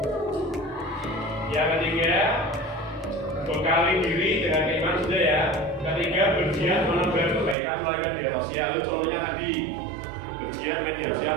Yang ketiga, bekali diri dengan keimanan sudah ya. Ketiga, bergiat menebar kebaikan melalui media sosial. Itu contohnya tadi. Bergiat media sosial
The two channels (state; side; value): drops out; left; at 7.6 s